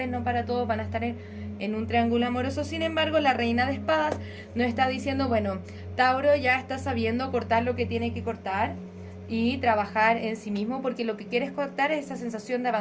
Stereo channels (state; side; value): identical; both; correlation 1.00